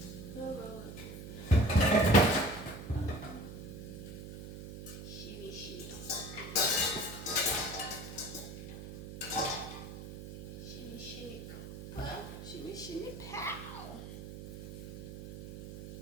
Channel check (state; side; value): noise; right; hum, 11 dB below the sound